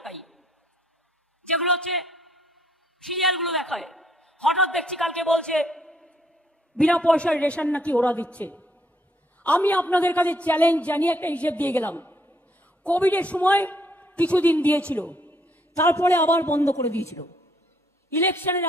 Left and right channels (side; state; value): both; normal; correlation 0.69